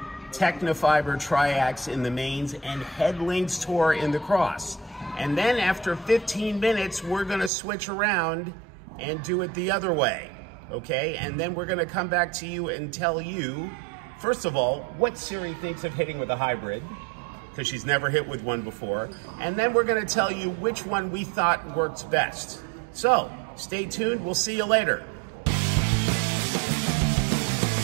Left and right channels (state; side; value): drops out; left; at 7.5 s